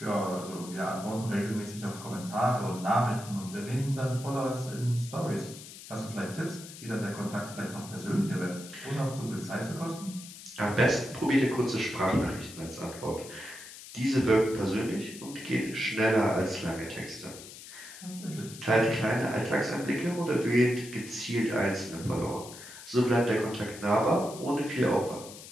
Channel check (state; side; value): noise; left; hiss, 15 dB below the sound